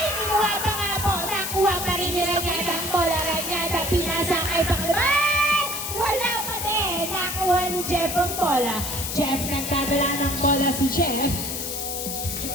kinuha pa nga po. Nakuha pa rin ni Ranyada ang bola. Ranyada, pinasa kay Pakliban. Wala pa din. Nakuha ni Jeff ang bola. Jeff, nagdadala ng bola si Jeff.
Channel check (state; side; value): noise; left; hiss, 4 dB below the sound